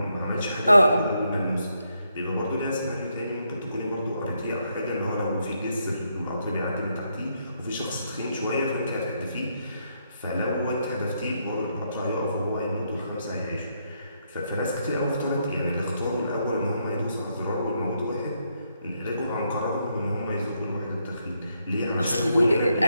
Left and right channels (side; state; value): both; inverted; correlation -0.78